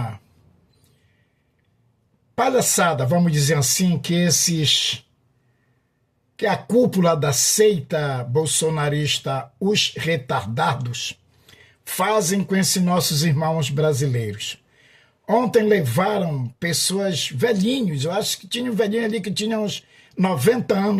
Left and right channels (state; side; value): identical; both; correlation 1.00